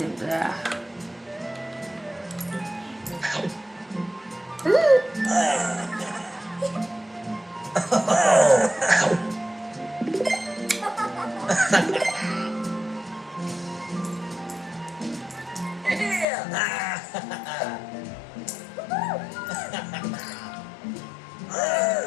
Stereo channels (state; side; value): drops out; right; at 16.2 s